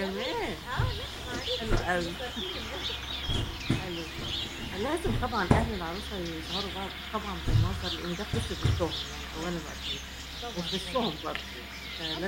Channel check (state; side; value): identical; both; correlation 1.00